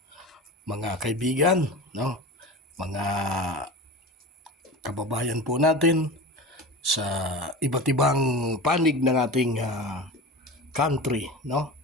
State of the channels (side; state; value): both; normal; correlation 0.31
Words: mga kaibigan, no? Mga kababayan po natin sa iba't ibang panig ng ating country, no?